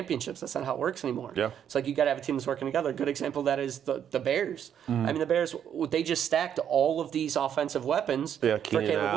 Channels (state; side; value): quieter; left; 9.1 dB